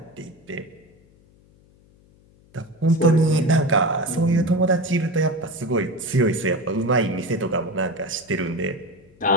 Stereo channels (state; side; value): noise; left; hum, 29 dB below the sound